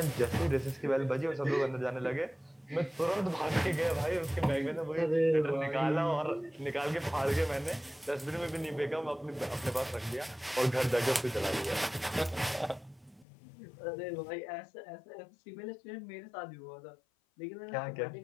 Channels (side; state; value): right; drops out; at 13.2 s